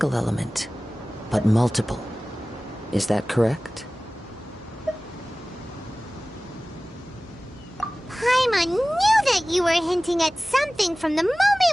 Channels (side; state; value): both; normal; correlation 0.98